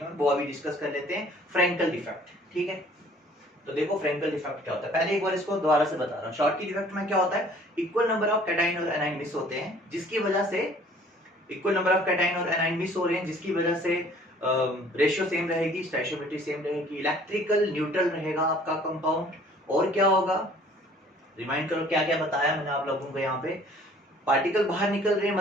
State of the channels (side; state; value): both; normal; correlation 0.54